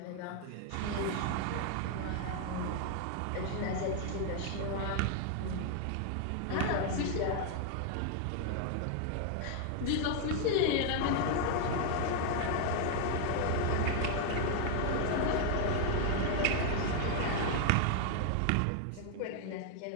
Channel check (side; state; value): both; different; correlation 0.00